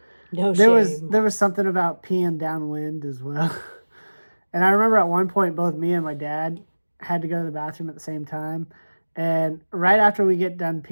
no there shame. was something about peeing downwind as well. And I remember at one point both me and my dad had to go to the bathroom at the same time. And right after we get done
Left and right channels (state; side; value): inverted; both; correlation -1.00